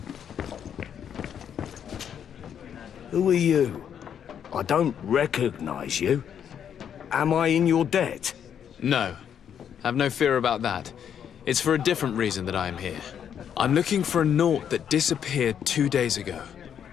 Who are you? I don't recognize you. Am I in your debt? No. Have no fear about that. It's for a different reason that I am here. I'm looking for a Naut that disappeared 2 days ago,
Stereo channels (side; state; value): right; quieter; 8.6 dB